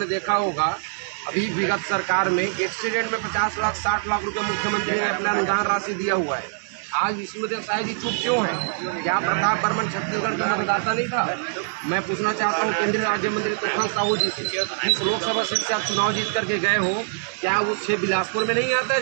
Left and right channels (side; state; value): left; silent; digital silence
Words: देखा होगा अभी विगत सरकार में एक्सीडेंट में 50 लाख 60 लाख रुपए मुख्यमंत्री ने अपना अनुदान राशि दिया हुआ है। आज विष्णुदेव साय जी चुप क्यों है? क्या प्रताप बर्मन छत्तीसगढ़ का मतदाता नहीं था? मैं पूछना चाहता हूँ केंद्रीय राज्य मंत्री तूफान साहू जी से, इस लोकसभा सीट से आप चुनाव जीत करके गए हो, क्या वो 6 बिलासपुर में नहीं आता है